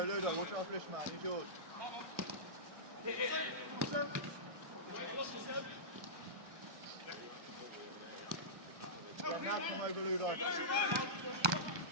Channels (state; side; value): late; left; 1.2 ms